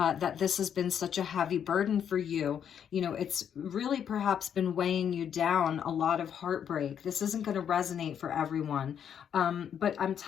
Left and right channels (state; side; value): quieter; right; 8.5 dB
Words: this has been such a heavy burden for you. You know, it's really perhaps been weighing you down, a lot of heartbreak. This isn't going to resonate for everyone. But I'm